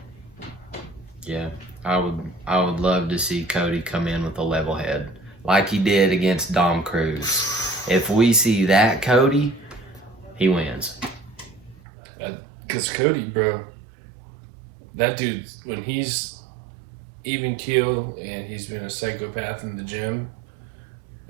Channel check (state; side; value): drops out; left; at 11.8 s